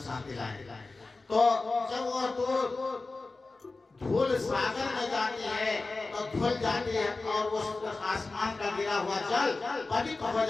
शांति लाए। तो जब वो धूल सागर में जाती है तो धुल जाती है और वो आसमान का गिरा हुआ जल पवित्र हो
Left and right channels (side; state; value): right; quieter; 3.5 dB